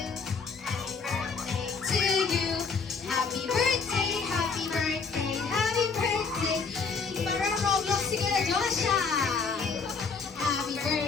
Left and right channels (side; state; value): right; quieter; 5.1 dB